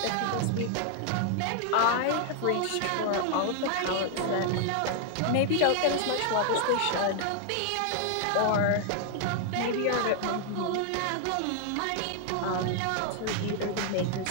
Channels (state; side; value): different; both; correlation 0.00